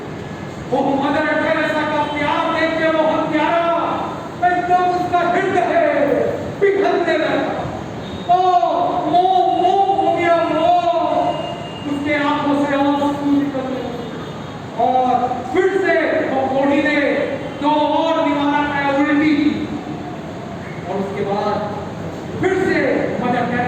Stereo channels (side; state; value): both; identical; correlation 1.00